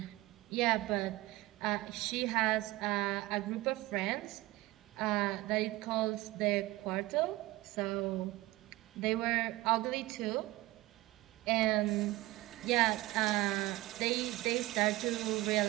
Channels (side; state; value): left; quieter; 19.0 dB